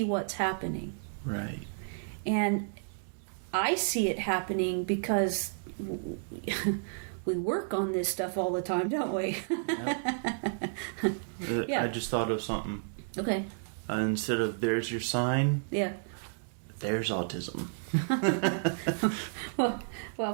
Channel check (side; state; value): left; silent; digital silence